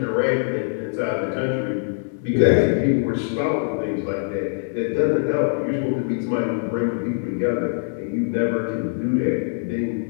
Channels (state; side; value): silent; right; digital silence